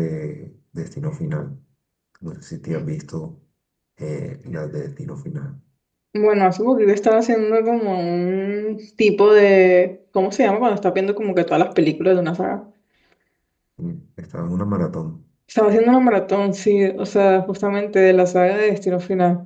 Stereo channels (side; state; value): both; identical; correlation 1.00